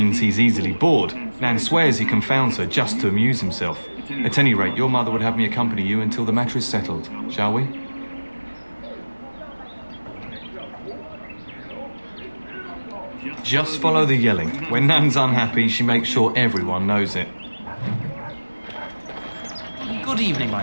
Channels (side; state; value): both; inverted; correlation -1.00